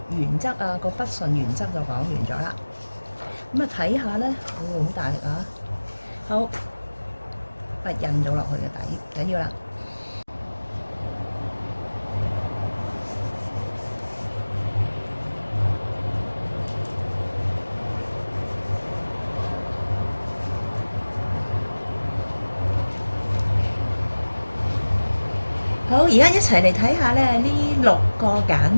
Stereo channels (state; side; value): inverted; both; correlation -1.00